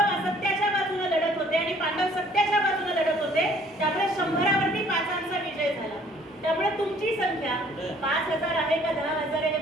असत्याच्या बाजूने लढत होते आणि पांडव सत्याच्या बाजूने लढत होते. त्यामुळे 100वरती 5चा विजय झाला. त्यामुळे तुमची संख्या 5000 आहे का 10000 आहे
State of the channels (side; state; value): both; normal; correlation 0.58